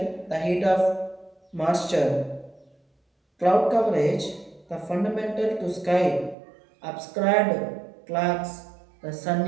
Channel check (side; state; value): left; drops out; at 6.4 s